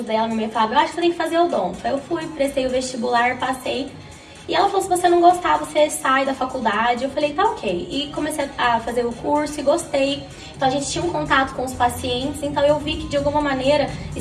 dela. Minha mãe falava, eu acho que você tem que fazer odonto. Aí eu fui, prestei o vestibular, passei. E ela falou, se você não gostar, você sai da faculdade. Eu falei, tá ok. E comecei a fazer o curso e gostei. Então a gente tinha um contato com os pacientes, então eu vi que de alguma maneira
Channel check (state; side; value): identical; both; correlation 1.00